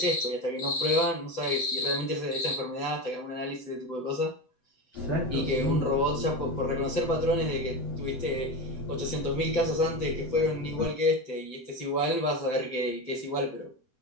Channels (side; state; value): right; late; 7.9 ms